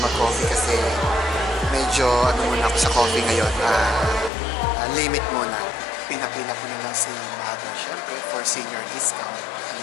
mag-coffee kasi medyo muna ako sa coffee ngayon. Limit muna. Pinapila ko na lang si Mother, syempre, for senior discount.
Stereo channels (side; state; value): right; drops out; at 4.3 s